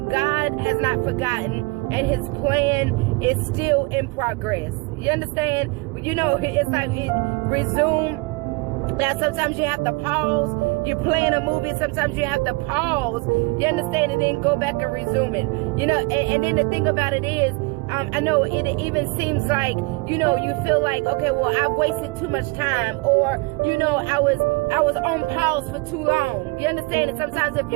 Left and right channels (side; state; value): left; quieter; 26.3 dB